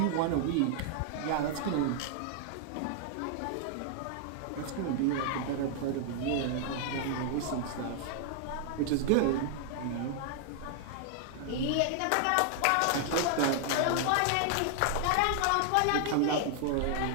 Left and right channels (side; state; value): both; different; correlation -0.01